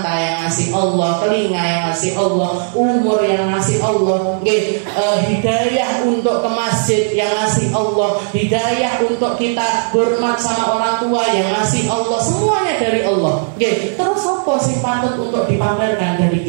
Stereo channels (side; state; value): left; silent; digital silence